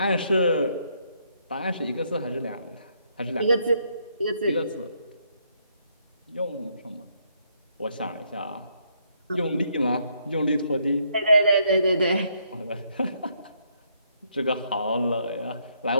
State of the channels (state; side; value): inverted; both; correlation -0.73